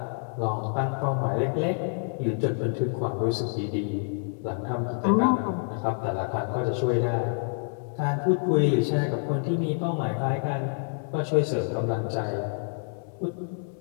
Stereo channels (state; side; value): silent; right; 60 dB below the other